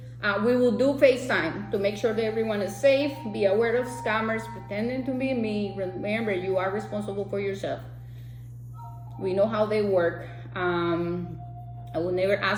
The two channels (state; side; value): identical; both; correlation 1.00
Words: we will do FaceTime to make sure that everyone is safe. Be aware of scammers pretending to be me. Remember, you are responsible for yourself. We know how they work. I will never